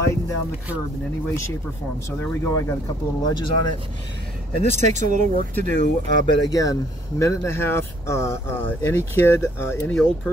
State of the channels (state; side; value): normal; both; correlation 0.64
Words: down the curb in any way, shape, or form. So there we go. I got a couple little edges on it. And this takes a little work to do, but again, minute and a half. Any kid, any old